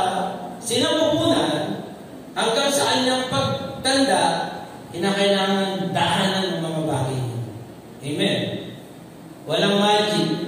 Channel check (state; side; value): identical; both; correlation 1.00